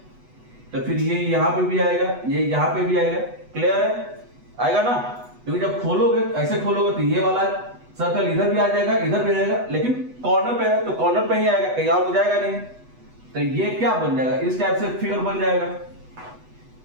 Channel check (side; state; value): left; late; 8.1 ms